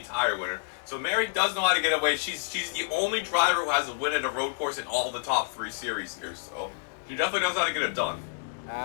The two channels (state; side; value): silent; right; digital silence